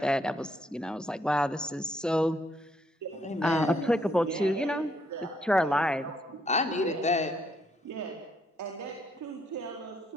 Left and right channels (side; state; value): both; normal; correlation 0.71